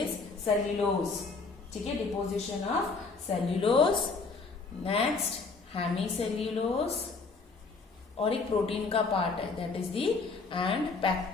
सेल्यूलोज। ठीक है, deposition of cellulose, next hemicellulose, और एक प्रोटीन का पार्ट है that is the and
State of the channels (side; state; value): right; quieter; 4.2 dB